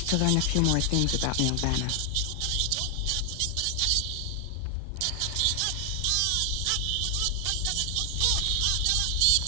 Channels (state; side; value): different; both; correlation 0.00